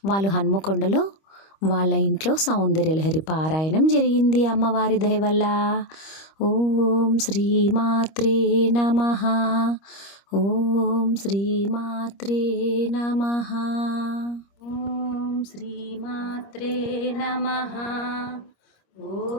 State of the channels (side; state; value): right; late; 25 ms